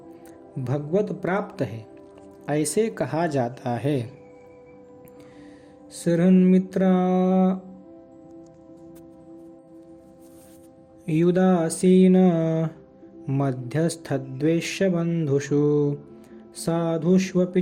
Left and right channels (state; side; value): identical; both; correlation 1.00